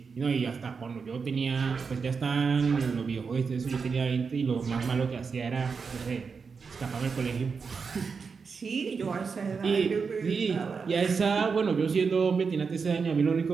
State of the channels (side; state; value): left; quieter; 5.4 dB